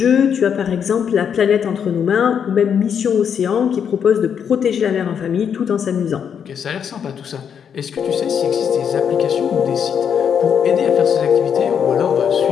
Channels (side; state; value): right; quieter; 7.7 dB